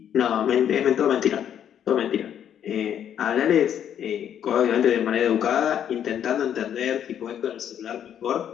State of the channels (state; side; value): quieter; right; 9.5 dB